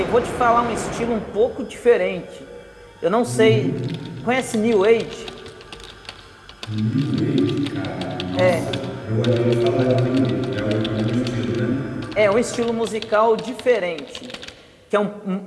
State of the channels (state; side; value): identical; both; correlation 1.00